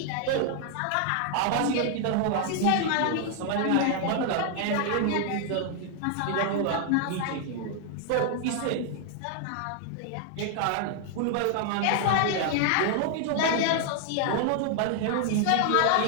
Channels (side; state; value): both; different; correlation 0.00